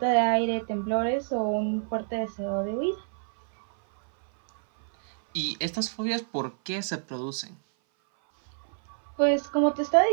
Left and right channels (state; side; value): silent; left; 57 dB below the other